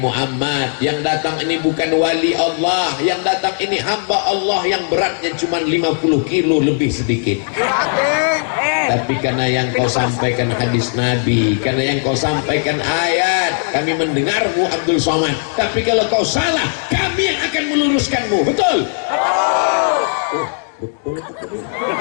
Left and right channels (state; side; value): silent; right; digital silence